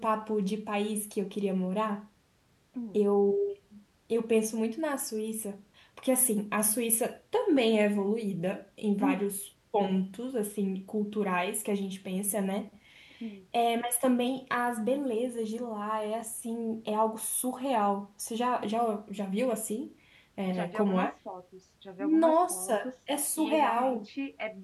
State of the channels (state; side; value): identical; both; correlation 1.00